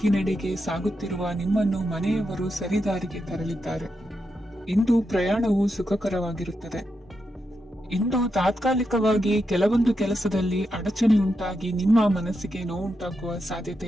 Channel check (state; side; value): normal; both; correlation 0.85